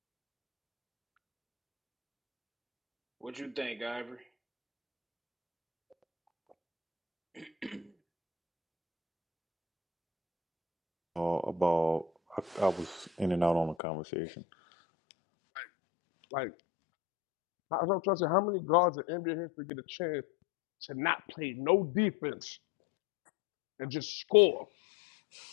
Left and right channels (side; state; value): right; drops out; at 13.8 s